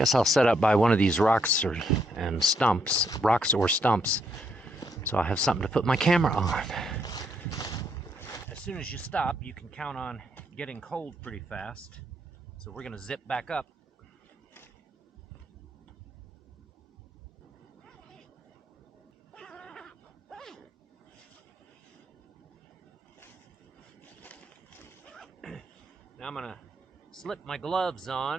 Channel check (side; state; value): both; normal; correlation 0.74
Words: I'll set up by one of these rocks or stumps, so I'll have something to put my camera on. As soon as you stop, you can count on getting cold pretty fast. So we're gonna zip back up. Now I'm gonna slip my gloves